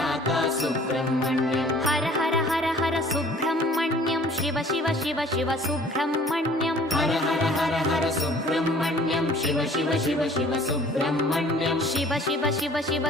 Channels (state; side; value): normal; both; correlation 0.52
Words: सुब्रह्मण्यं हर हर हर हर सुब्रह्मण्यं शिव शिव शिव शिव सुब्रह्मण्यं हर हर हर हर सुब्रह्मण्यं शिव शिव शिव शिव सुब्रह्मण्यं शिव शिव शिव शिव